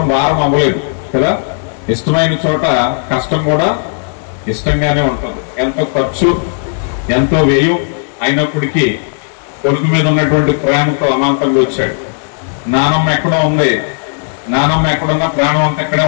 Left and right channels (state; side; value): silent; right; digital silence